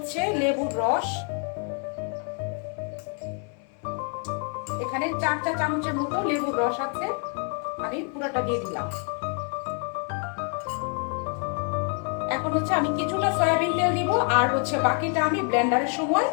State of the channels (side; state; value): right; quieter; 38.5 dB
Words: লেবুর রস, এখানে 4 চা চামচের মতো লেবুর রস আছে, আমি পুরোটা দিয়ে দিলাম। এখন হচ্ছে আমি কিছুটা সয়াবিন তেল দিব, আর হচ্ছে বাকিটা আমি ব্লেন্ডারের সময়